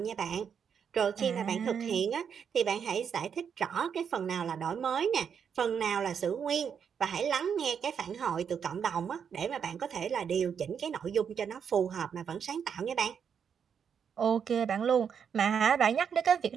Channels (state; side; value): quieter; left; 7.3 dB